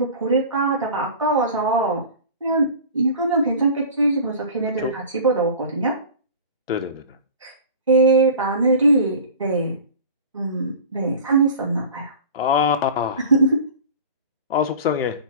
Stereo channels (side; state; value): both; inverted; correlation -0.38